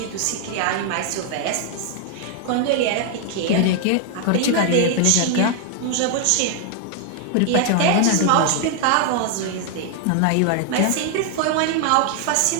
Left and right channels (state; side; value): different; both; correlation 0.00